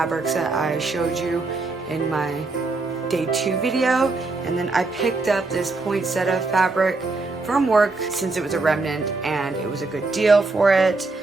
that I showed you in my day 2 video, and then I picked up this poinsettia fabric from work since it was a remnant and it was a good deal for it.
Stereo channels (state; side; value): quieter; left; 3.5 dB